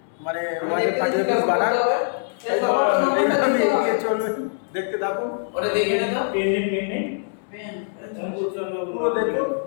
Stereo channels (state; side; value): silent; right; 63 dB below the other